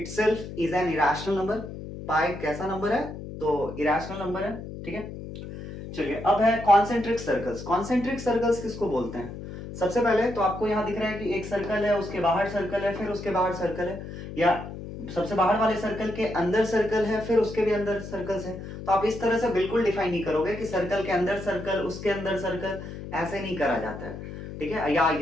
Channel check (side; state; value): left; noise; hum, 10 dB below the sound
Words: is an irrational number. Pi कैसा नंबर है? तो इरेशनल नंबर है, ठीक है। चलिए अब है कॉन्सेंट्रिक सर्कल्स। कॉन्सेंट्रिक सर्कल्स किसको बोलते हैं? सबसे पहले तो आपको यहां दिख रहा है कि एक सर्कल है, उसके बाहर सर्कल है, फिर उसके बाहर सर्कल है, या सबसे बाहर वाले सर्कल के अंदर सर्कल है, फिर उसके भी अंदर सर्कल्स है। तो आप इस तरह से बिल्कुल डिफाइन नहीं करोगे कि सर्कल के अंदर सर्कल, उसके अंदर सर्कल, ऐसे नहीं करा जाता है, ठीक है। या